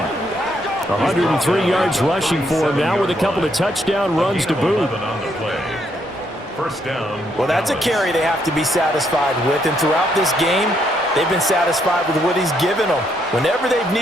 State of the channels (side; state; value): both; normal; correlation 0.74